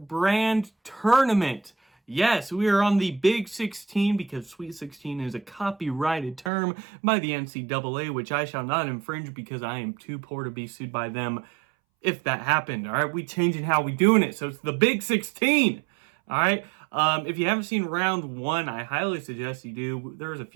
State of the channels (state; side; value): drops out; left; at 6.5 s